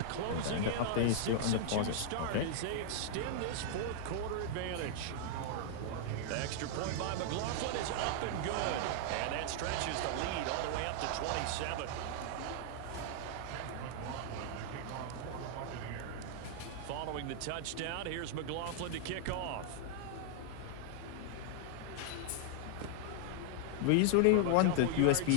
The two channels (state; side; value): different; both; correlation -0.01